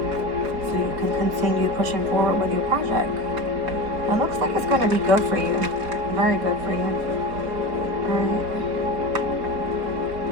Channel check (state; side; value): late; left; 4.6 ms